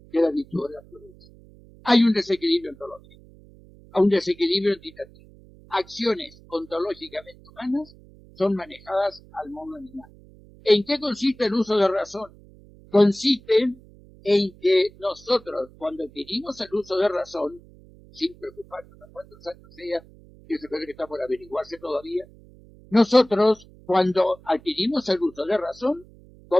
que es la virtud de la prudencia. Hay un desequilibrio ontológico, un desequilibrio entitativo. Acciones ontológicamente humanas son manejadas al modo animal. ¿En qué consiste el uso de razón? Consiste en que nosotros, cuando adquirimos el uso de razón, sin preocuparnos a cuántos años sea, que se puede que está por averiguarse todavía, nosotros, cuando adquirimos el uso de razón,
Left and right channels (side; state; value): right; noise; hum, 24 dB below the sound